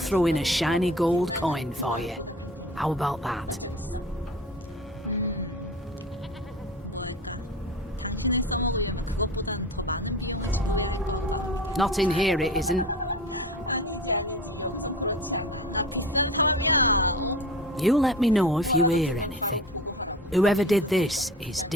in a shiny gold coin for you. How about that? Not in here, it isn't. You let me know if you hear anything. Whoever did this is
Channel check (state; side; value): normal; both; correlation 0.35